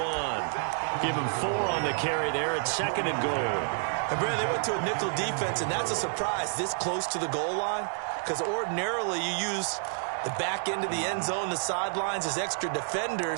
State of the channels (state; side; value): silent; left; digital silence